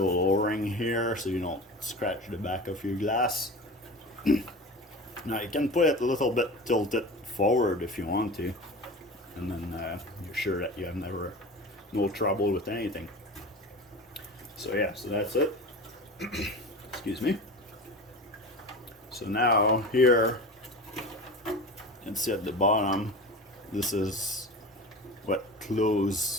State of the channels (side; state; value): both; normal; correlation 0.32